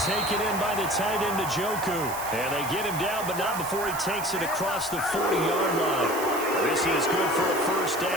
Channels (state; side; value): noise; right; hiss, 10 dB below the sound